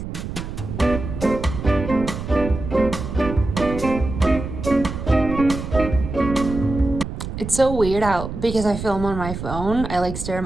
It's so weird out because I film on my phone. I like stare at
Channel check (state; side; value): noise; right; rumble, 7 dB below the sound